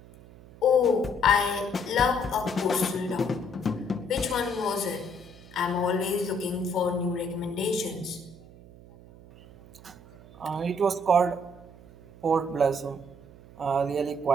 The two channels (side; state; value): right; noise; hum, 21 dB below the sound